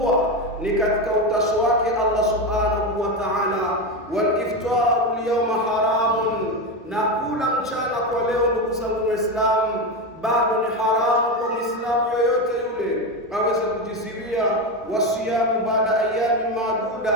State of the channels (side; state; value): both; normal; correlation 0.15